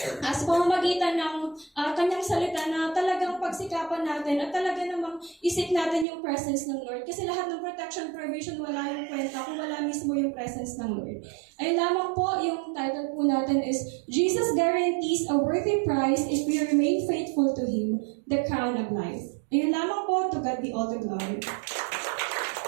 sa pamamagitan ng Kanyang salita na talagang pagsikapan natin at talaga namang isip natin yung presence ng Lord. Kasi lahat ng protection, provision, wala yung kwenta kung wala mismo yung presence ng Lord. Ayun lamang po, yung title po natin is Jesus guarantees a worthy prize if we remain faithful to Him, the crown of life. Ayun lamang po, to God be all the glory.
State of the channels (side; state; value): left; drops out; at 6.1 s